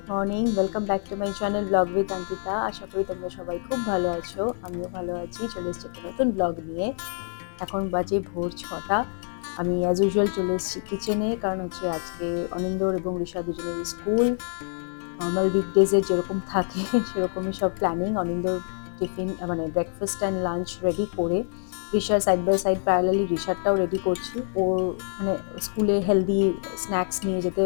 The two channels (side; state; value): right; silent; 60 dB below the other